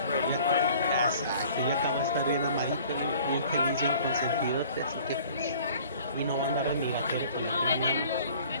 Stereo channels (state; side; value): inverted; both; correlation -0.50